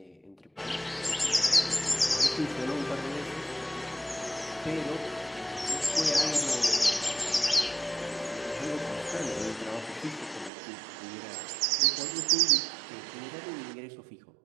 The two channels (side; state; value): left; drops out; at 10.5 s